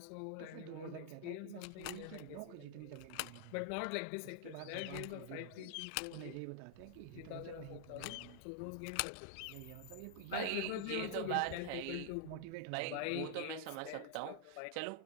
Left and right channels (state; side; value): different; both; correlation 0.00